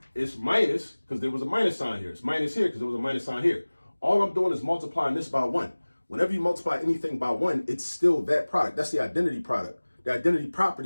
it's minus because there was a minus sign here. It's minus here because there was a minus sign here. All I'm doing is multiplying this by 1. Whenever you multiply anything by 1, it's still that product. That's the identity product, the identity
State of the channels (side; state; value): both; inverted; correlation -1.00